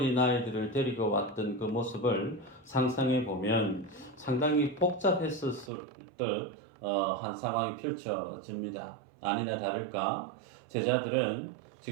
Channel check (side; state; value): left; drops out; at 5.7 s